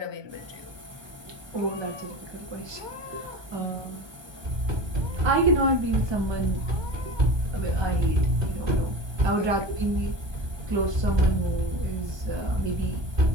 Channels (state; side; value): late; left; 1.2 ms